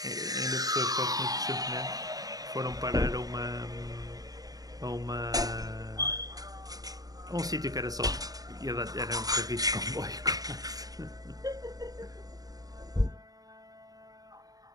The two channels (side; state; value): left; late; 0.18 ms